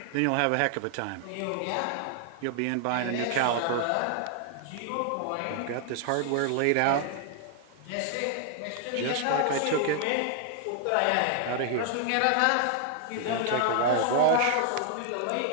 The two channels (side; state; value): both; different; correlation 0.00